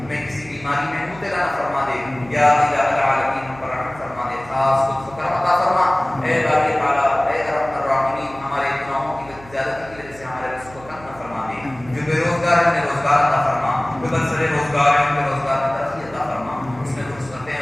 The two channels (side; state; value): right; noise; hum, 20 dB below the sound